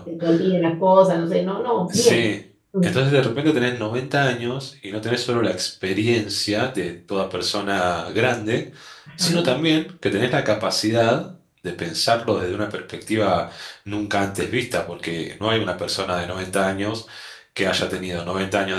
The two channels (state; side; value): identical; both; correlation 1.00